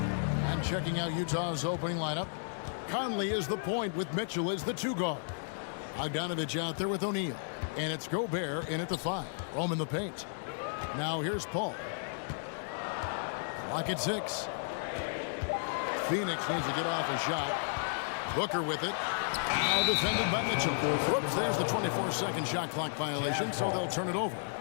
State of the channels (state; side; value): silent; right; digital silence